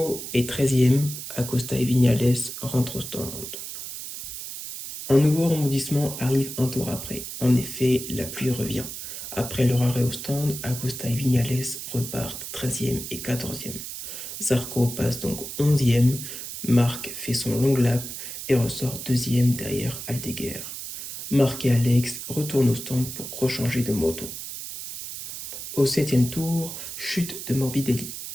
est 13e, Acosta et Viñales rentrent au stand. Un nouveau rebondissement arrive un tour après. En effet, la pluie revient. Après leur arrêt au stand, Acosta et Viñales repartent 13e et 14e. Zarco passe donc 11e, Marc fait son long lap et ressort 2e derrière Aldeguer. Marc et Alex retournent au stand pour rechanger de moto. Au 7e tour, chute de Morbidelli.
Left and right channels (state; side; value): noise; right; hiss, 8 dB below the sound